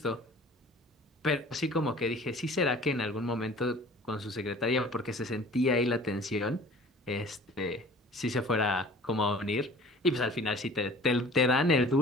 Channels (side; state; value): both; normal; correlation 0.47